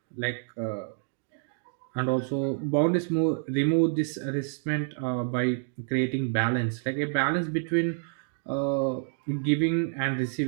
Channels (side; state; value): left; silent; digital silence